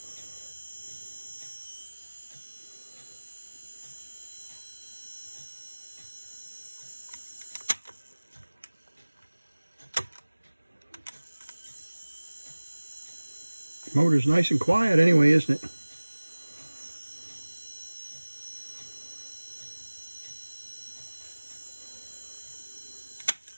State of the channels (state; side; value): inverted; both; correlation -1.00